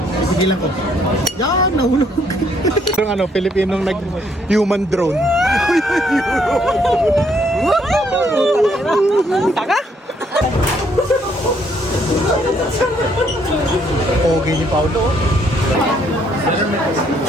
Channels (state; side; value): normal; both; correlation 0.69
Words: Sigilan ko. Yan, nahulog. Yung ano, Pilipinong nag-human drone. Taka? Okay ni Paulo.